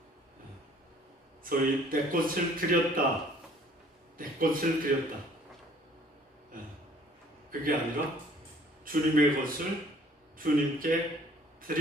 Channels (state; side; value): normal; both; correlation 0.56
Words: 소위 내 것을 드렸다. 내 것을 드렸다. 그게 아니라 주님의 것을 주님께